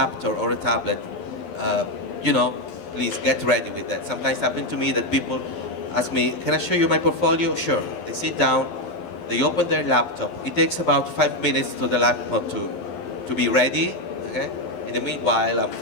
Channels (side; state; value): right; late; 12 ms